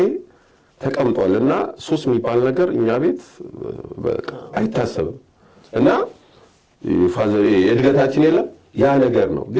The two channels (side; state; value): both; identical; correlation 1.00